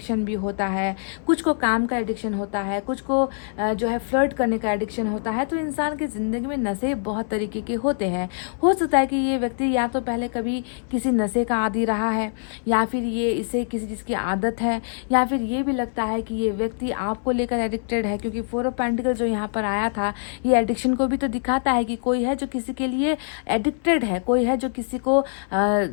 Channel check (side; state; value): right; silent; 63 dB below the other